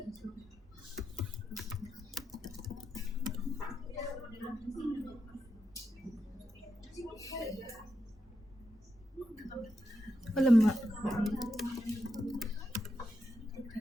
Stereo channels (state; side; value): normal; both; correlation 0.86